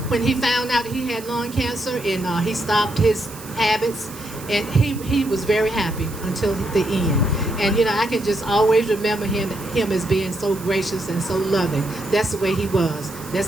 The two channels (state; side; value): noise; right; hiss, 16 dB below the sound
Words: when he found out he had lung cancer, and he stopped his habits, and he was very happy until the end. And I can just always remember him as being so gracious and so loving. That's the way he was.